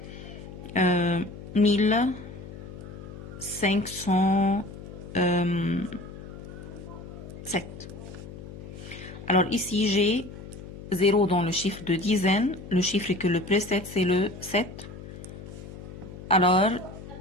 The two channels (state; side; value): noise; left; hum, 13 dB below the sound